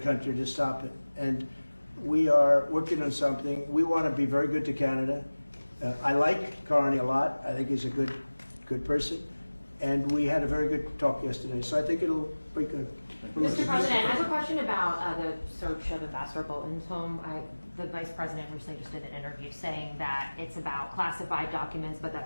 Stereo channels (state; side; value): inverted; both; correlation -1.00